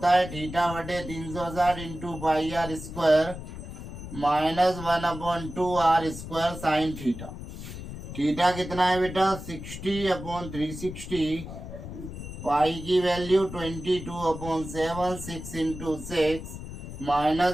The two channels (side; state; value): left; noise; rumble, 10 dB below the sound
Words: है? थीटा बटे 360 into pi r square minus 1/2 r² sine theta. Theta कितना है बेटा? 60/360। पाई की value 22/7, 6 into 6